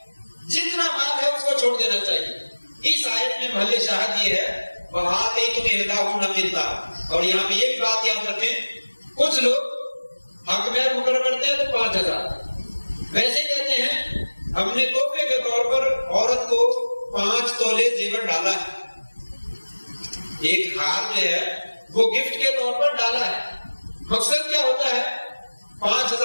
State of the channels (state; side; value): inverted; both; correlation -1.00